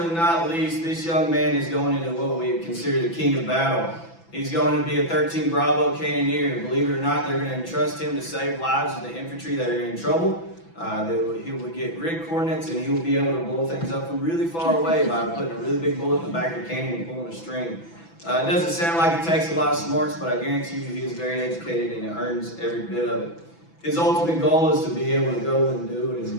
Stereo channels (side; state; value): right; late; 6.0 ms